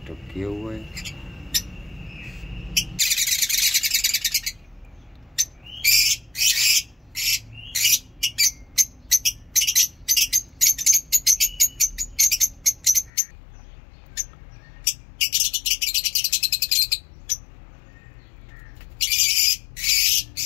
किए हुए है।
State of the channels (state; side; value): drops out; right; at 13.1 s